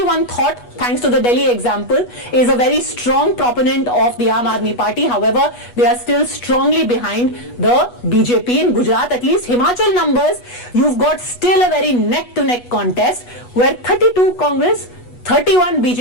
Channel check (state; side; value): late; right; 8.2 ms